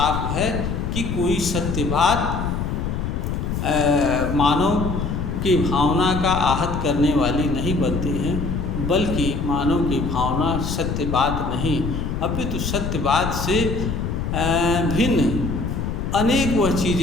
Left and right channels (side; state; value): left; noise; rumble, 2 dB below the sound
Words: है कि कोई सत्य बात मानव की भावना का आहत करने वाली नहीं बनती हैं, बल्कि मानव की भावना सत्य बात नहीं अपितु सत्य बात से भिन्न अनेक वह